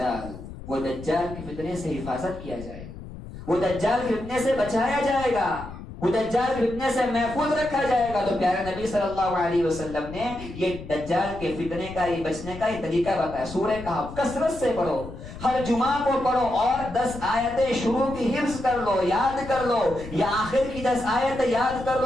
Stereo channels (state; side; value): noise; left; rumble, 13 dB below the sound